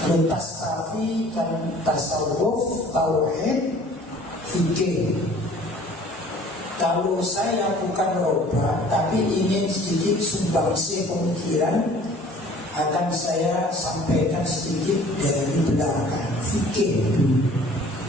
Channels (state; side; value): normal; both; correlation 0.51